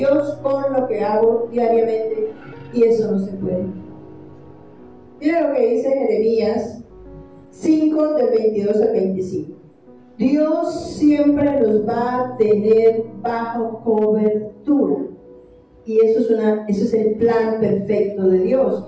con lo que hago diariamente, y eso no se puede. Mira lo que dice Jeremías 5, del 22 al 25. Dios siempre los va a tener bajo cobertura, y eso es el plan perfecto de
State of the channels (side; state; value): both; identical; correlation 1.00